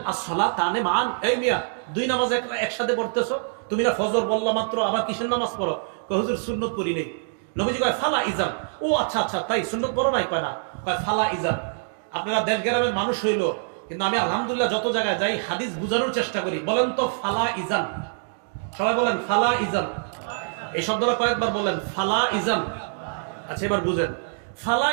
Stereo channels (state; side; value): silent; left; digital silence